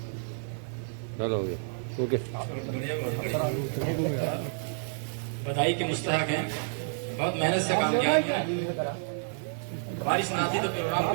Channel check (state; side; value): silent; left; digital silence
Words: चलो हो गया, ओके। बधाई के मुस्तहक हैं, बहुत मेहनत से काम किया है। बारिश ना आती तो प्रोग्राम